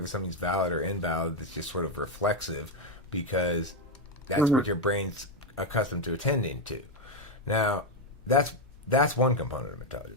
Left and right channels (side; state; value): both; normal; correlation 0.05